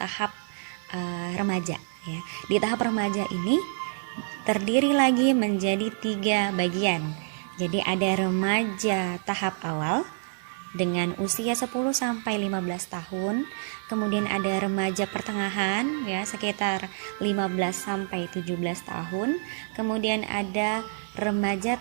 remaja ya. Di tahap remaja ini terdiri lagi menjadi 3 bagian. Jadi ada remaja tahap awal dengan usia 10 sampai 15 tahun. Kemudian ada remaja pertengahan ya, sekitar 15 sampai 17 tahun. Kemudian ada remaja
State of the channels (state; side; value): silent; left; digital silence